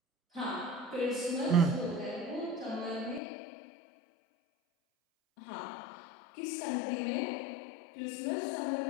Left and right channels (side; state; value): right; drops out; at 3.2 s